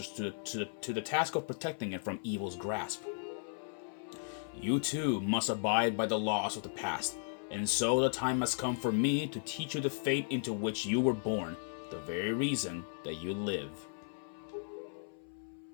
to the task of protecting it from evil's grasp. You too must abide by the laws of the past And so the time has come for me to teach you the fate into which you were born, the very reason that you live.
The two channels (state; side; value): silent; right; 54 dB below the other